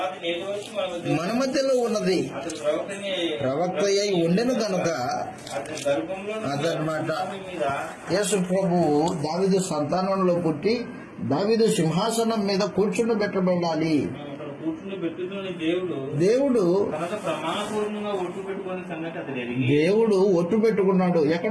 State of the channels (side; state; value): both; identical; correlation 1.00